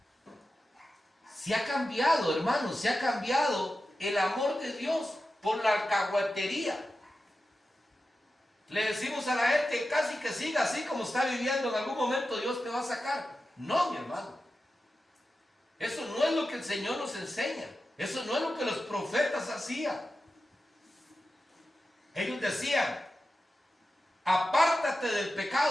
Se ha cambiado, hermanos, se ha cambiado el amor de Dios por la alcahuetería. Le decimos a la gente casi que siga así como está viviendo, en algún momento Dios te va a sacar. No, mi hermano. Eso no es lo que el Señor nos enseña. Eso no es lo que los profetas hacían. Ellos decían, apártate del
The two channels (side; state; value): both; normal; correlation 0.92